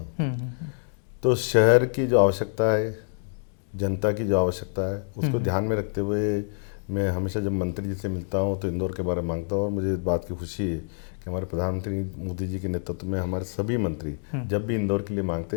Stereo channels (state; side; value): silent; right; digital silence